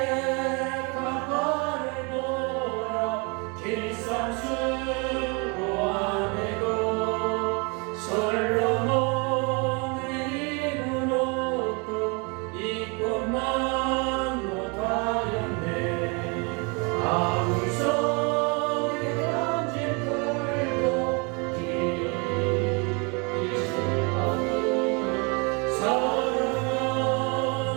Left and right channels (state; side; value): quieter; left; 31.5 dB